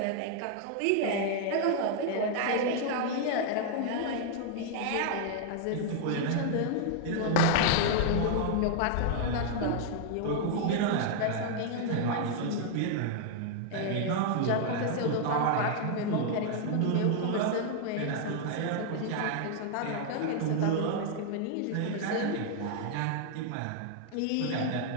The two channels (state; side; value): different; both; correlation 0.00